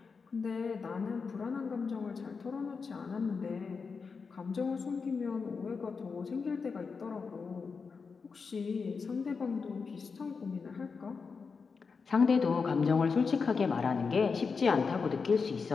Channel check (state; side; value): quieter; right; 5.1 dB